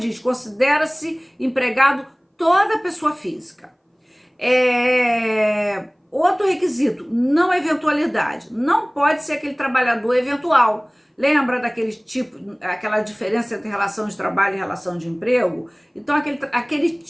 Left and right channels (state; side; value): identical; both; correlation 1.00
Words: considera-se empregado toda pessoa física. Outro requisito, não eventualidade. Não pode ser aquele trabalhador eventual. Lembra aquela diferença entre relação de trabalho e relação de emprego? Então, aquele